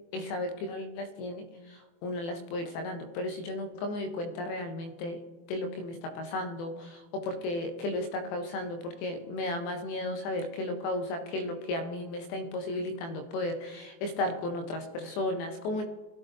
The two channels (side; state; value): right; late; 24 ms